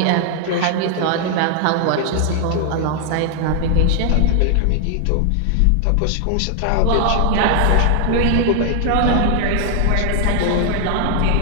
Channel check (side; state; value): both; different; correlation 0.00